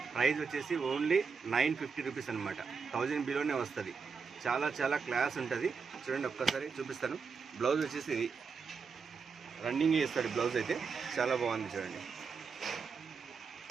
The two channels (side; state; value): left; quieter; 5.4 dB